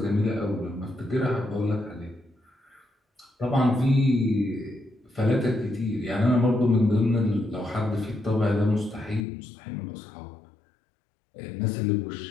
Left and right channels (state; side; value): drops out; right; at 9.2 s